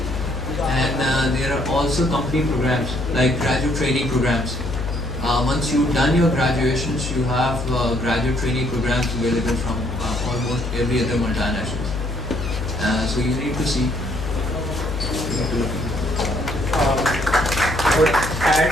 and there are also company programs like graduate training programs. Once you've done your graduations, you have graduate training programs available from almost every other multinationals. So you need to see. I would add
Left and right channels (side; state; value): left; noise; hum, 5 dB below the sound